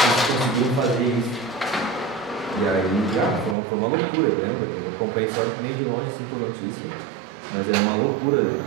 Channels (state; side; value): drops out; left; at 3.6 s